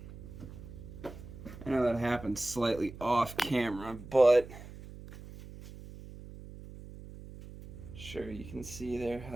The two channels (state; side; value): noise; right; hum, 14 dB below the sound